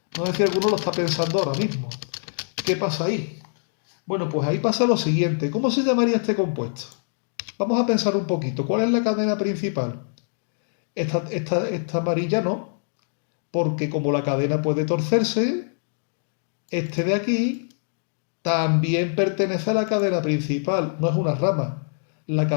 No sé si alguno lo está pensando ahora mismo. ¿Qué pasa ahí? Bueno, pues ahí pasa lo siguiente. ¿Cómo se llamaría este compuesto? Vamos a pensar un poquito. ¿Cuál es la cadena principal? Esta amarilla no, porque como la cadena puede torcerse, este de aquí también pertenece a la cadena principal, no es una rama. La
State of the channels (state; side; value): silent; right; digital silence